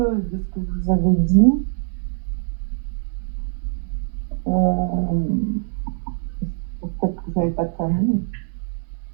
de ce que vous avez dit. Peut-être que vous n'avez pas de famille.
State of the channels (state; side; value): silent; left; 58 dB below the other